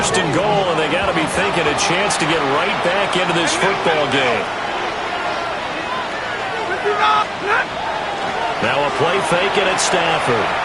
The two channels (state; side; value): identical; both; correlation 1.00